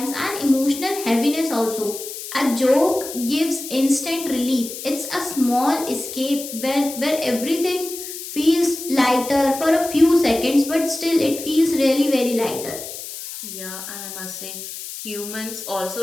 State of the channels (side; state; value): left; noise; hiss, 10 dB below the sound